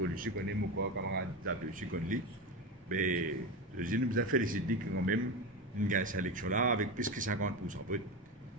connaît mon camarade Zabé aussi, connaît. Mais je nous a félicité quand même une gagne cette élection-là avec plus que 50%.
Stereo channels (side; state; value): both; normal; correlation 0.20